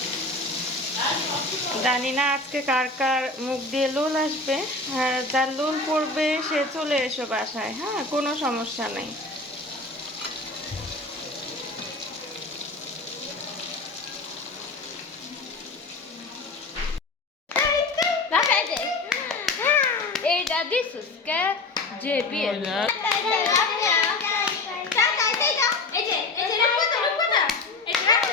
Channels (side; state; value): right; quieter; 3.2 dB